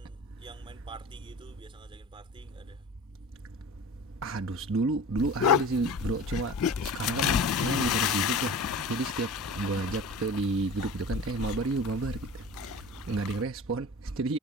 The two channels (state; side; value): normal; both; correlation 0.37